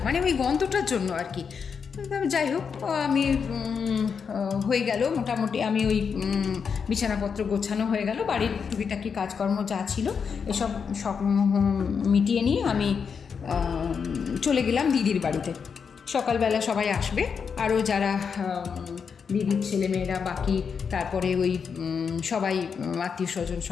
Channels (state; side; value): quieter; right; 6.2 dB